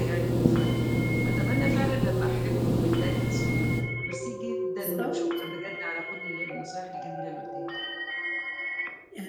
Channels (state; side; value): identical; both; correlation 1.00